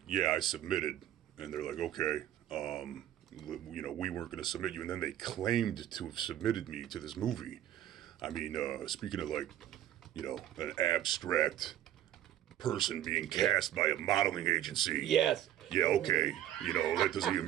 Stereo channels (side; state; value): left; quieter; 11.9 dB